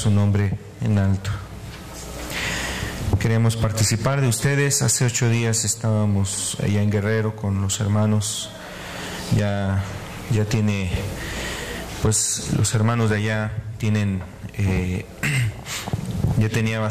nombre en alto. Queremos participar de ustedes. Hace 8 días estábamos allá en Guerrero con los hermanos. Ya tiene, pues los hermanos de allá tienen, ya tenía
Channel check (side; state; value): both; identical; correlation 1.00